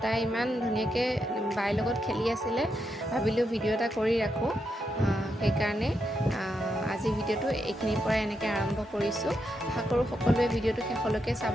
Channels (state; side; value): normal; both; correlation 0.83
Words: তাই ইমান ধুনীয়াকৈ বাইৰ লগত খেলি আছিলে। ভাবিলোঁ ভিডিঅ' এটা কৰি ৰাখোঁ, সেইকাৰণে আজি ভিডিঅ'টো এইখিনিৰ পৰা এনেকৈ আৰম্ভ কৰিছোঁ। আশা কৰোঁ সকলোৱে ভিডিঅ'টো শেষলৈকে